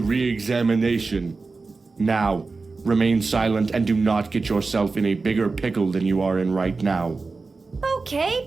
Now, remain silent and do not get yourself in a bigger pickle than you are in right now. Okay,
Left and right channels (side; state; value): left; quieter; 4.0 dB